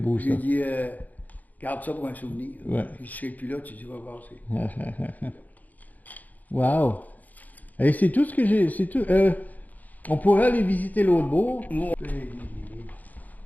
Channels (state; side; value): late; right; 0.080 ms